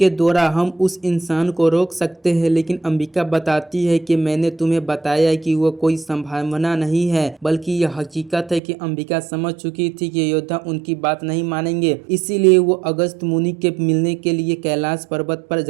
द्वारा हम उस इंसान को रोक सकते हैं। लेकिन अंबिका बताती है कि मैंने तुम्हें बताया कि वो कोई संभावना नहीं है बल्कि यह हकीकत है कि अंबिका समझ चुकी थी कि योद्धा उनकी बात नहीं मानेंगे। इसीलिए वो अगस्त मुनि के मिलने के लिए कैलाश पर्वत पर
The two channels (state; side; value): drops out; left; at 8.6 s